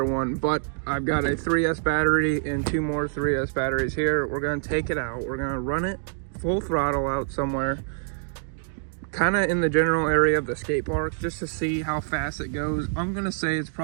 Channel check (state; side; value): silent; left; digital silence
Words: one, but I've got a 3S battery and 2 more 3S batteries here. We're gonna take it out. We're gonna run it full throttle out somewhere, kind of in the general area of the skate park, just to see how fast it goes. I'm gonna say it's